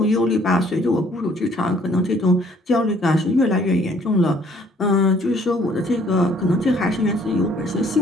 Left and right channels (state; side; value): normal; both; correlation 0.61